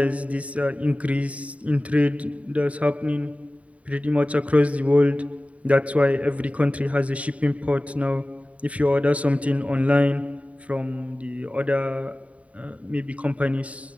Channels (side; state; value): left; late; 0.067 ms